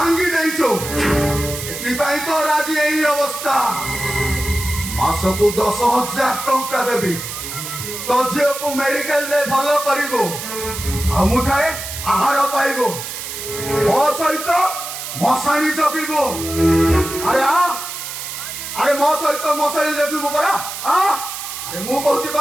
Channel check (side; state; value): right; noise; hiss, 8 dB below the sound